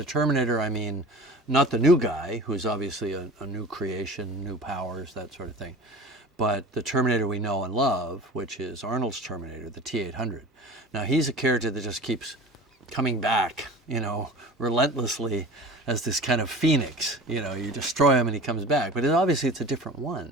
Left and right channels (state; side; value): normal; both; correlation 0.38